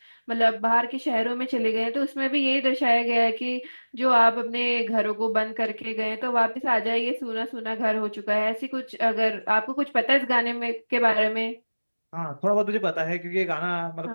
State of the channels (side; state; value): both; inverted; correlation -1.00